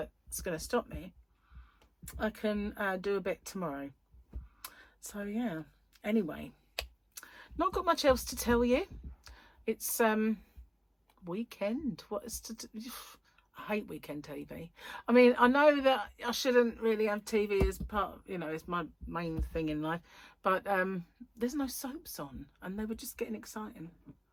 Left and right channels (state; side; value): identical; both; correlation 1.00